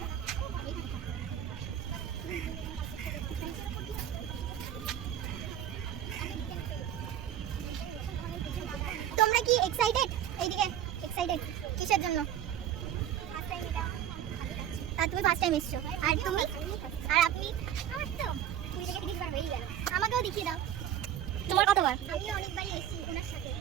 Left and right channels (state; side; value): quieter; left; 10.4 dB